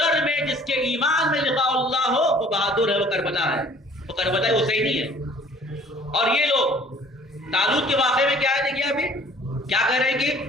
میں، جس کے ایمان میں لقاء اللہ ہو، وہ بہادر ہے، وہ کربلا ہے، وہ کربلا حسینی ہے۔ اور یہ لوگ طالوت کے واقعے میں کیا ہے؟ دیکھیے ابھی کیا کہہ رہے ہیں کہ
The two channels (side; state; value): both; normal; correlation 0.53